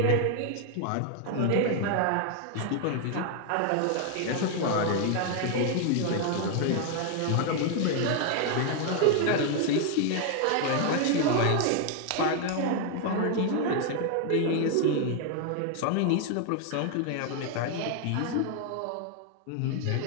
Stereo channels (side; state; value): both; different; correlation 0.00